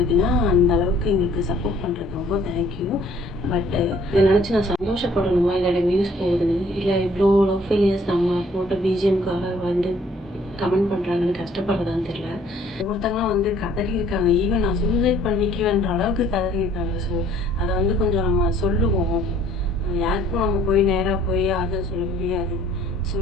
இருக்குன்னா, அந்தளவுக்கு எங்களுக்கு சப்போர்ட் பண்ணுறது ரொம்ப தேங்க்யூ. பட் இதை நினச்சி நான் சந்தோஷப்படணுமா, இல்லை வியூஸ் போகுதுன்னு, இல்லை இவ்வளோ லவ் ஃபெயிலியர்ஸ் நம்ம போட்ட பிஜிஎம்காக வந்து கமெண்ட் பண்ணுறாங்கன்னு கஷ்டப்படுறதான்னு தெரியல. ஒவ்வொருத்தங்களாம் வந்து கதறி இருக்காங்க. ஈவன் நான் சூசைட் பண்ணிக்குவேன்ற அளவுக்கு கதறி இருக்காங்க. ஸோ அதை வந்து கொஞ்சம் நம்ம சொல்லுவோம். யாருக்கும் நம்ம போய் நேராக போய் ஆறுதல் சொல்ல முடியாது. ஸோ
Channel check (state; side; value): normal; both; correlation 0.58